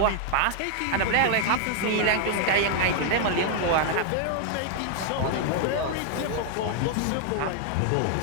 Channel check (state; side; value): different; both; correlation 0.00